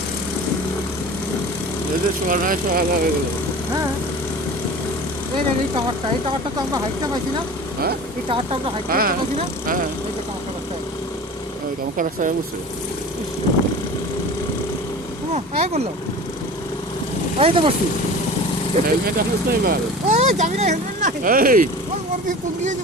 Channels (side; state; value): both; normal; correlation 0.38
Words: এদের সোয়া নয় সোয়া হয়ে গেল হ্যাঁ এই টাওয়ারটা তো আমরা হাইটটা পাইছি না। হ্যাঁ এই টাওয়ারটা আমরা হাইটটা হ্যাঁ পাইছি না। হ্যাঁ এই যে টাওয়ারটা রাস্তা গামাখা রাস্তায় বসছে এই করলো, এই তো বসছি। হেলমেট আসিস না এবার এই যাবি না, হেলমেট নাই। এই ওর দিয়ে তুল দিয়ে